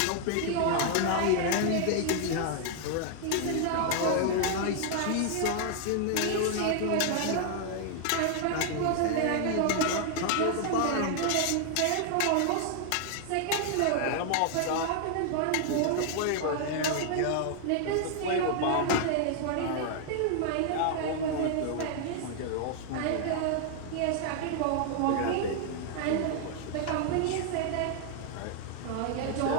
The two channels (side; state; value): both; different; correlation 0.00